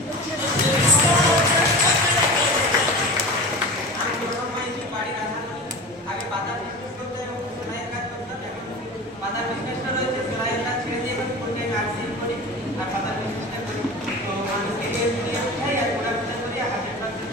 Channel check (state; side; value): normal; both; correlation 0.32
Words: বাড়ির আগে পাতার বিজনেস করতে এবং সেলাইয়ের কাজ করতাম। এখন পাতার বিজনেসটা রয়েছে, সেলাইয়ের কাজ ছেড়ে দিয়ে এখন ফুলটাইম নার্সিং করি আর পাতার বিজনেসটা করি। তো মানুষকে হেল্প দিয়ে উঠাই আর প্রোডাক্ট করি, 100%